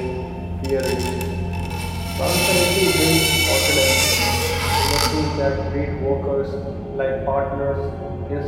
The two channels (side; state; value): both; identical; correlation 1.00